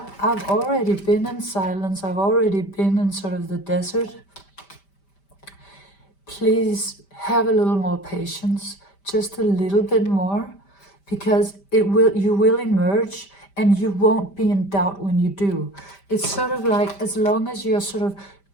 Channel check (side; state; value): right; late; 5.1 ms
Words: I've already been in silence. I've already been in sort of the desert. Please have a little more patience, just a little bit more, because you will emerge, and you won't be in doubt when you do. It's sort of like, as long as you're sort of